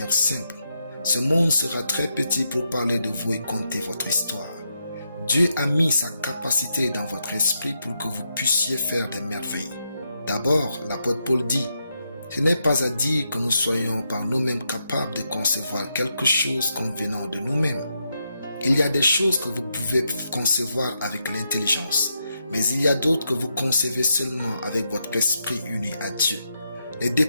simple, ce monde sera très petit pour parler de vous et conter votre histoire. Dieu a mis sa capacité dans votre esprit pour que vous puissiez faire des merveilles. D'abord, l'apôtre Paul dit, ce n'est pas à dire que nous soyons par nous-mêmes capables de concevoir quelque chose comme venant de nous-mêmes. Il y a des choses que vous pouvez concevoir avec l'intelligence, mais il y a d'autres que vous concevez seulement avec votre esprit uni à Dieu. Ne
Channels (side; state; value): both; inverted; correlation -0.82